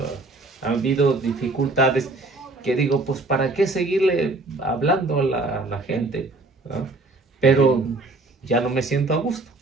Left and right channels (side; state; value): left; quieter; 3.1 dB